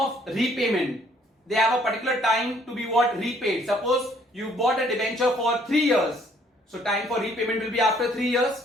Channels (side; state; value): both; normal; correlation 0.63